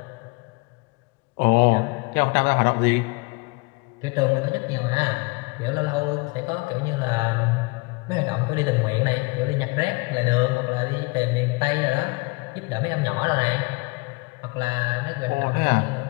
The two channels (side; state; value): right; quieter; 27.2 dB